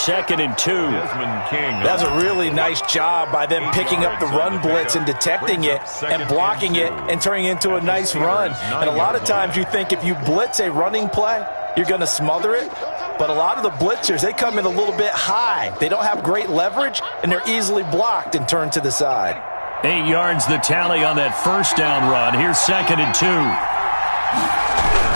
and 2. That's a really nice job by them picking up the run blitz and detecting it and blocking it and turning it into a nice run. And a lot of times you think if you blitz a running play, you're going to smother it. But a lot of the blitzers, they come in a little bit high. They don't have great leverage, and they're easily blocked and turned to the side. 8 yards the tally on that first down run. Here's 2nd and 2.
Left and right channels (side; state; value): both; inverted; correlation -1.00